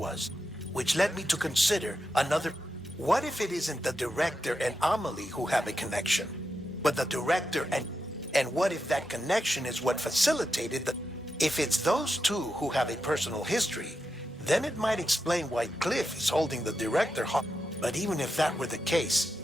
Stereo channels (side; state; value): both; normal; correlation 0.87